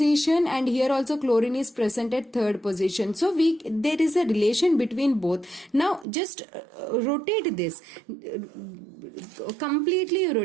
and here also chlorine is present at third position. So there is a relation between both. Now just rotate this, completely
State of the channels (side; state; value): left; drops out; at 6.1 s